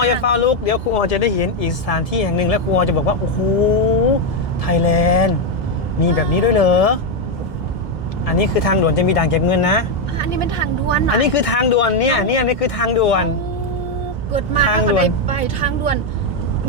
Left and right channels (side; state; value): both; normal; correlation 0.04